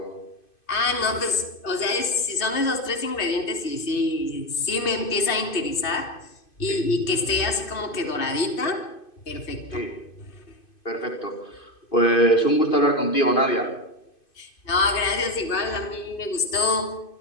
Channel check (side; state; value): right; late; 2.5 ms